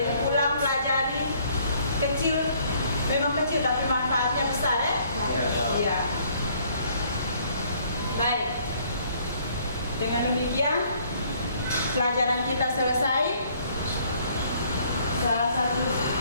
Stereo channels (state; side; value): inverted; both; correlation -0.62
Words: ulang pelajari kecil, memang kecil tapi manfaatnya besar ya. Iya. Baik. Dengan demikian pelajaran kita selesai. Salah satu